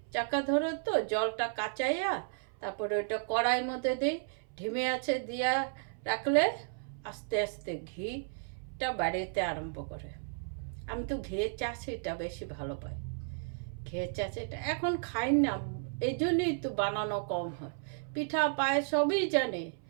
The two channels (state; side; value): silent; left; 55 dB below the other